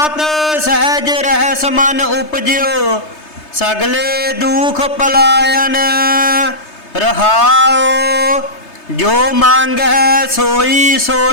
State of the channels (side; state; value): right; late; 3.3 ms